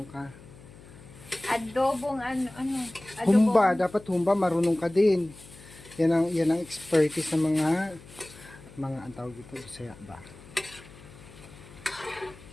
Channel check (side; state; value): left; noise; hum, 20 dB below the sound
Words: ka. Adobong ano, Humba, dapat humba, marunong ka din. Yan ang expertise ng mga ang tawag dito, Bisaya ba?